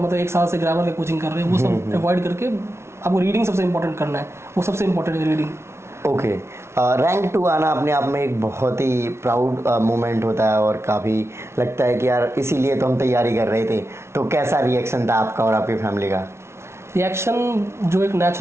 1 साल से ग्रामर का कोचिंग कर रहे हैं, वो सब अवॉइड करके आपको रीडिंग सबसे इंपॉर्टेंट करना है, वो सबसे इंपॉर्टेंट है रीडिंग। ओके, रैंक 2 आना अपने आप में एक बहुत ही प्राउड मोमेंट होता है और काफ़ी लगता है कि यार इसीलिए तो हम तैयारी कर रहे थे। तो कैसा रिएक्शन था आपका और आपकी फैमिली का? रिएक्शन जो एक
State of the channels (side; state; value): left; late; 0.13 ms